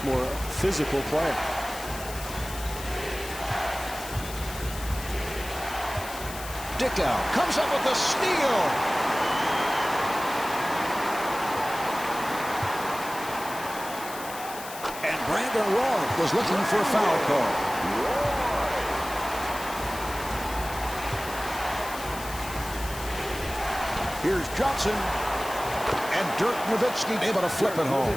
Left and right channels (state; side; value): noise; left; hiss, 12 dB below the sound